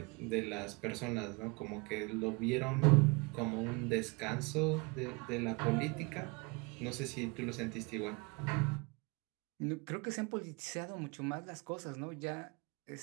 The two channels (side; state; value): left; quieter; 28.7 dB